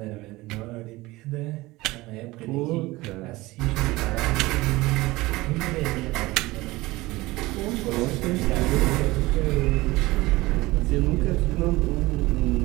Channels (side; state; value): left; quieter; 20.1 dB